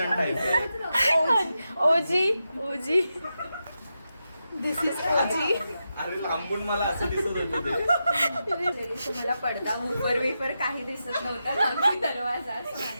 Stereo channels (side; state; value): both; inverted; correlation -0.88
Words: टाइप आहे. ओजी दिस इज ओजी. अरे लांबून मला असं दिसत होतं मला पडदा वेपर काही दिसत नव्हता. लांबी दरवाजा